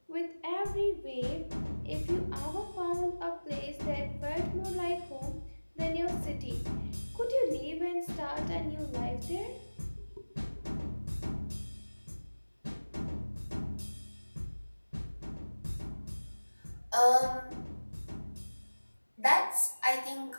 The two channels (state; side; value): inverted; both; correlation -1.00